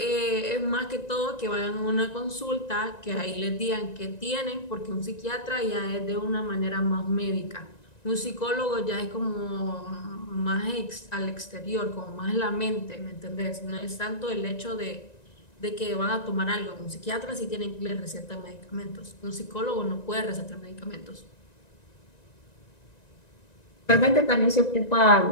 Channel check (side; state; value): right; late; 1.9 ms